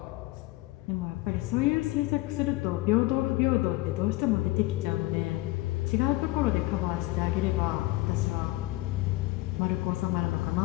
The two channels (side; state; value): right; quieter; 19.7 dB